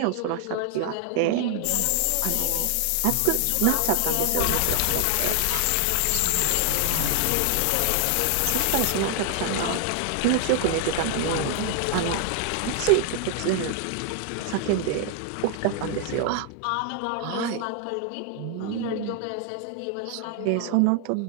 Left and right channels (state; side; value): different; both; correlation 0.00